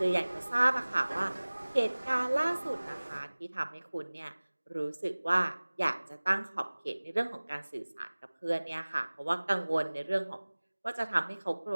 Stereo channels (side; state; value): both; inverted; correlation -1.00